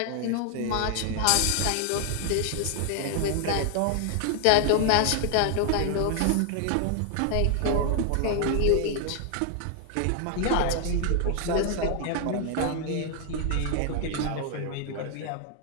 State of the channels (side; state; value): both; different; correlation 0.00